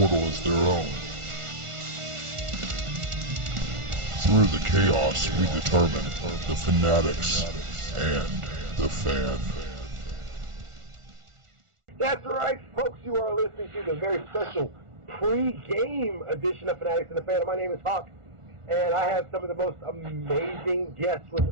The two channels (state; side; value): late; left; 1.4 ms